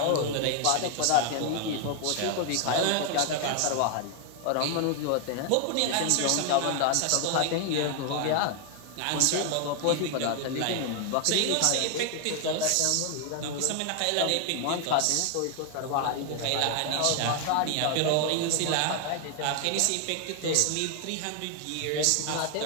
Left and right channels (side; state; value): both; different; correlation 0.00